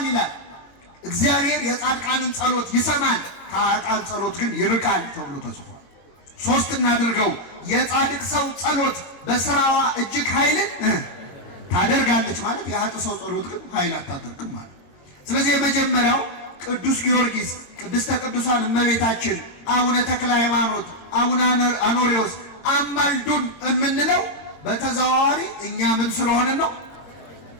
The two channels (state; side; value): late; right; 22 ms